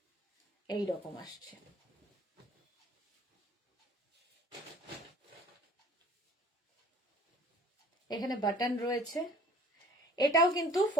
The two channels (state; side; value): normal; both; correlation 0.50